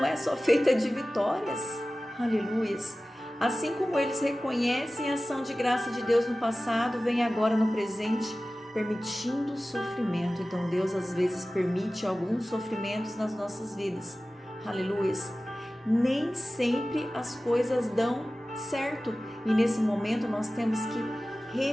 é só feita de vitórias, aleluias. Assim como eles reconhecem a ação de graça de Deus no passado, vem agora no presente, permitindo o sofrimento. Então Deus às vezes permite alguns sofrimentos nas nossas vidas, aleluias. Nem sempre as coisas dão certo e nesse momento nós temos que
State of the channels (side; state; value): both; normal; correlation 0.96